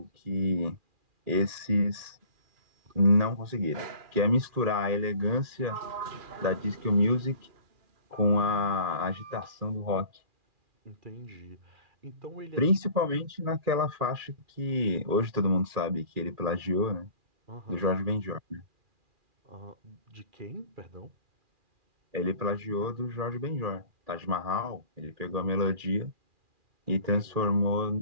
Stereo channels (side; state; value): left; late; 2.4 ms